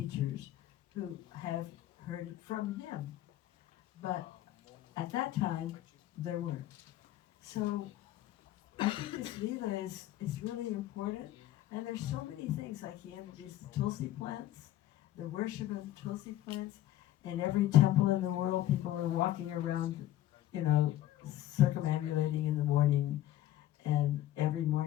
who have heard it from him. But at that time, there weren't. So I think this Leela is really important. And there's so many things, like he introduced the Tulsi plants, the worship of the Tulsi plants. In every temple in the world, people are walking around, circumambulating in the morning. And every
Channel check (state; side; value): quieter; right; 13.7 dB